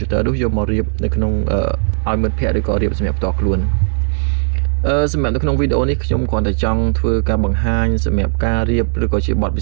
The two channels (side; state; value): left; silent; digital silence